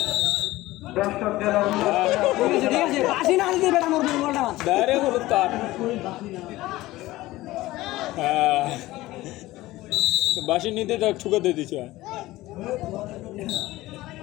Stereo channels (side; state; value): right; quieter; 17.7 dB